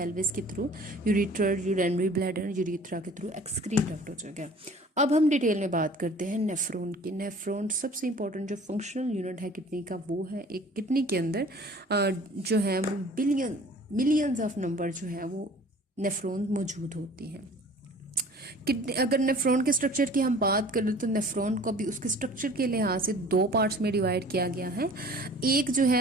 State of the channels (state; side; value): normal; both; correlation 0.48